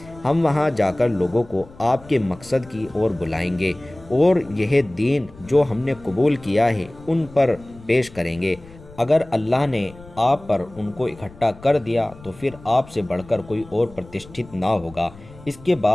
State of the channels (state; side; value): noise; left; rumble, 21 dB below the sound